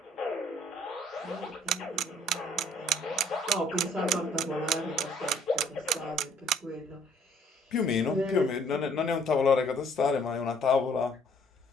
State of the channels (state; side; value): normal; both; correlation 0.61